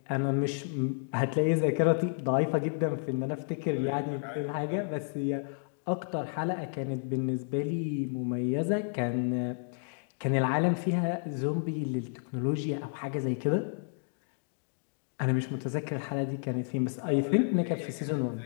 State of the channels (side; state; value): right; silent; digital silence